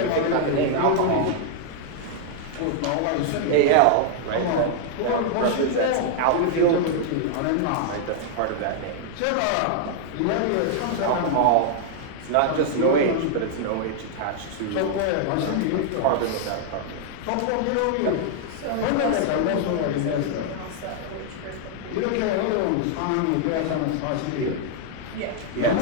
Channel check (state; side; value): different; both; correlation 0.00